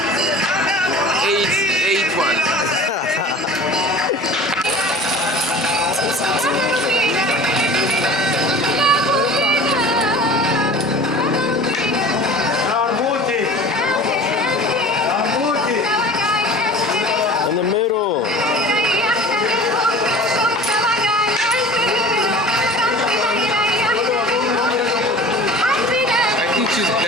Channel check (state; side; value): normal; both; correlation 0.41